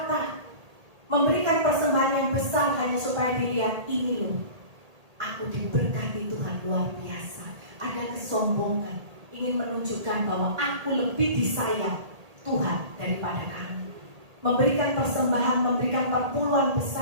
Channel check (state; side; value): late; left; 1.8 ms